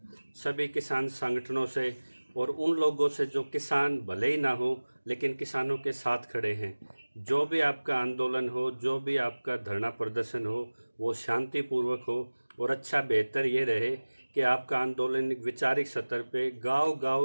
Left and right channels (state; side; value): inverted; both; correlation -1.00